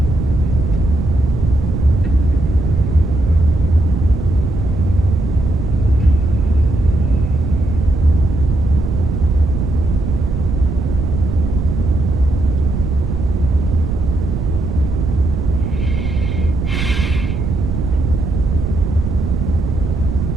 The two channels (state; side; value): noise; right; rumble, 2 dB below the sound